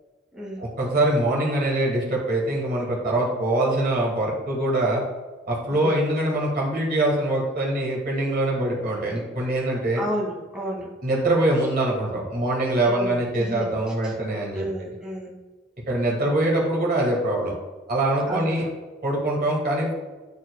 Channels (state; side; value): normal; both; correlation 0.48